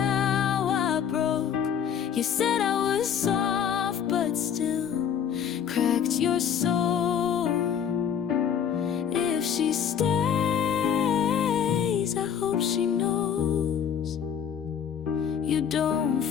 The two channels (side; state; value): right; quieter; 8.3 dB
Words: I broke. You said I was soft, but still cracked your soul. If she stays, I hope she knows you don't